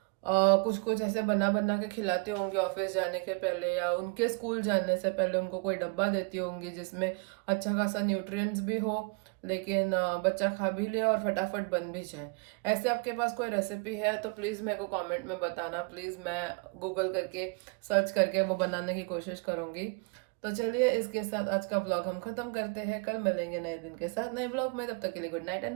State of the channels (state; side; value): quieter; left; 31.4 dB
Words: कुछ कुछ ऐसे बना बना के खिलाते होंगे ऑफिस जाने के पहले, या उनके स्कूल जाने से पहले उनको कोई डब्बा देती होंगी जिसमें अच्छा खासा न्यूट्रिएंट्स भी हो, लेकिन बच्चा खा भी ले और फटाफट बन भी जाए। ऐसे आपके पास कोई रेसिपी है तो प्लीज़ मेरे को कमेंट में बताना प्लीज़, मैं गूगल करके सर्च करके वो बनाने की कोशिश करूँगी। तो चलिए इसके साथ आज का ब्लॉग हम खत्म करते हैं, कल मिलेंगे नए दिन के साथ नए ब्लॉग में, तब तक के लिए गुड नाइट